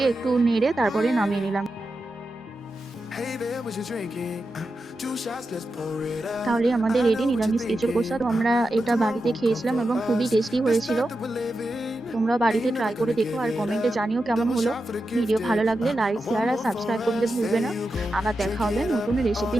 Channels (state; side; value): normal; both; correlation 0.89